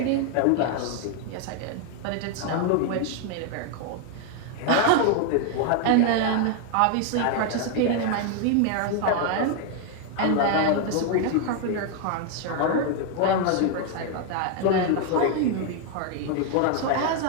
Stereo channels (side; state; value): both; different; correlation 0.01